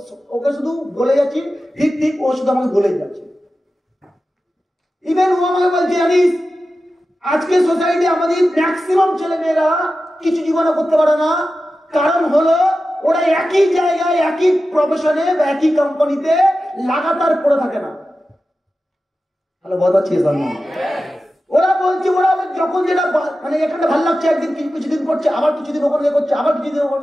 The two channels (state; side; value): normal; both; correlation 0.93